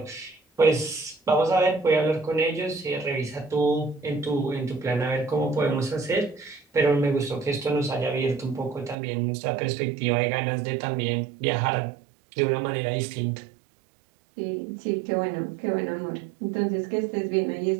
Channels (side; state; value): left; drops out; at 9.0 s